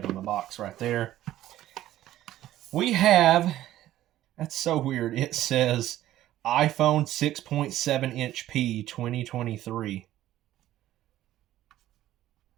on the box right there. We have, that's so weird. It says iPhone 6.7-inch P 2023.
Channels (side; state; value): left; quieter; 13.8 dB